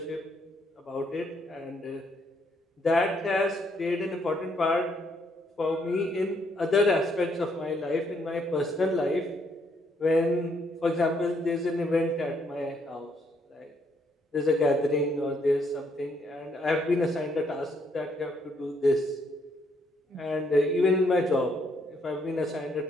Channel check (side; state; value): both; normal; correlation 0.72